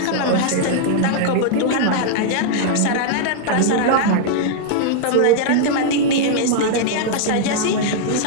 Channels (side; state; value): both; different; correlation -0.01